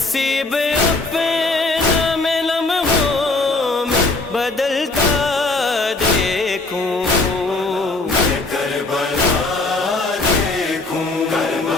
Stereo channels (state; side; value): quieter; right; 3.3 dB